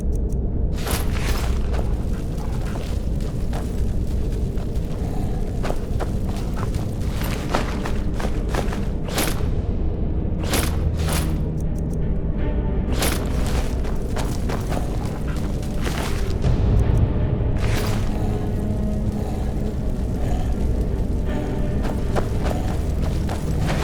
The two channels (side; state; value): both; identical; correlation 1.00